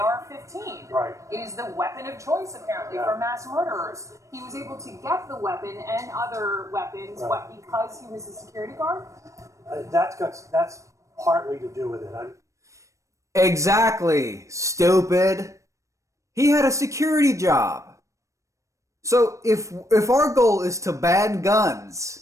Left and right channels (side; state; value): left; late; 0.15 ms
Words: Right. It is the weapon of choice, apparently, for mass murderers. He was able to get the weapon and other weapons, because he was a security guard? That's partly to do with it. Exactly, stupid. He had a security job. So if our goal is to ban guns,